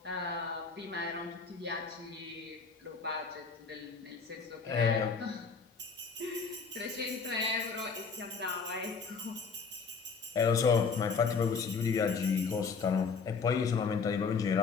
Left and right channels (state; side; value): quieter; right; 5.3 dB